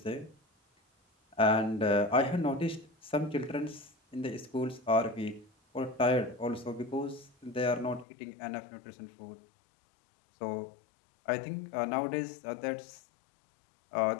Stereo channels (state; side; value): drops out; right; at 8.1 s